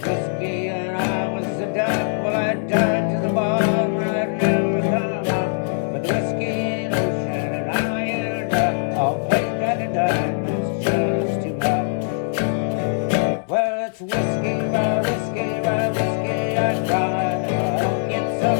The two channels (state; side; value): silent; right; digital silence